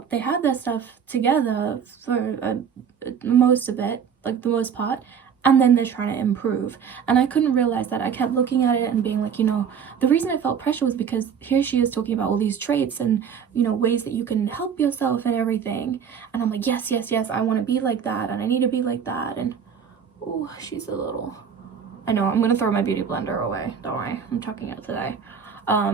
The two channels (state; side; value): quieter; left; 7.3 dB